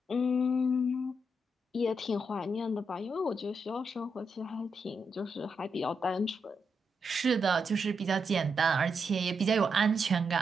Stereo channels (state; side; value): normal; both; correlation 0.82